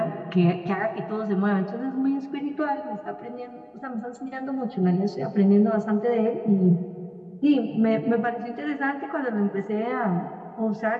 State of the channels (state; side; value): identical; both; correlation 1.00